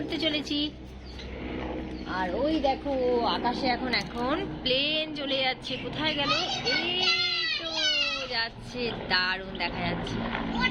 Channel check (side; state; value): both; identical; correlation 1.00